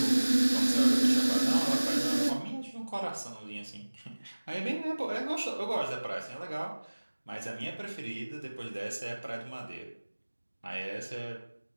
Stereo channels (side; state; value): both; inverted; correlation -1.00